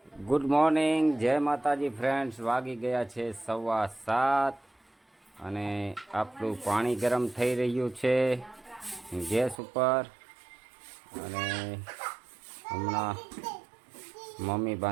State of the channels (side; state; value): left; drops out; at 9.6 s